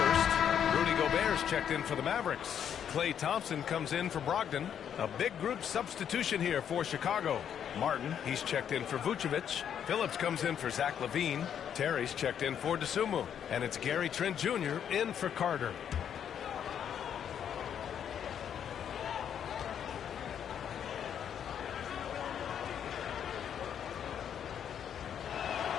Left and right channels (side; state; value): right; quieter; 8.8 dB